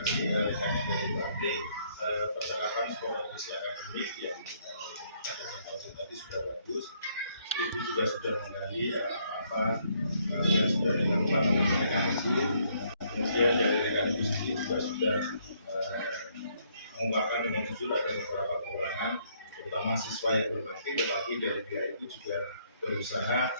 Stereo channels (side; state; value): both; inverted; correlation -0.69